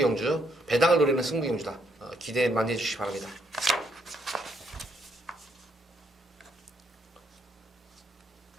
배당을 노리는 승부 경주다. 기대 많이 해주시기 바랍니다.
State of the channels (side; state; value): both; normal; correlation 0.73